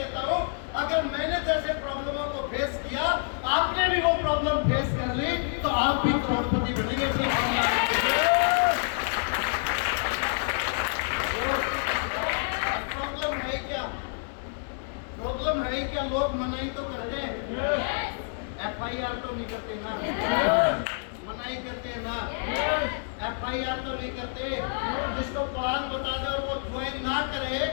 हूँ, अगर मैंने जैसे प्रॉब्लमों को फेस किया, आपने भी वो प्रॉब्लम फेस कर ली, तो आप भी करोड़पति बनेंगे। प्रॉब्लम है क्या? लोग मनाही तो करते हैं, FIR तो नहीं करते ना, मनाही करते ना, FIR तो नहीं करते। जिसको प्लान बता दे और वो ज्वाइन ना करे,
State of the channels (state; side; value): silent; right; digital silence